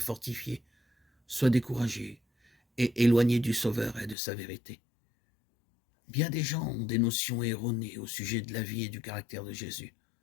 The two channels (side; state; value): right; drops out; at 4.2 s